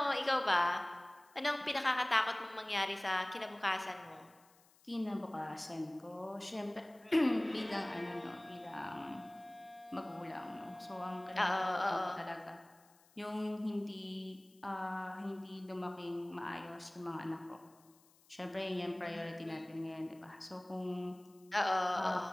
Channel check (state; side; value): noise; left; hiss, 29 dB below the sound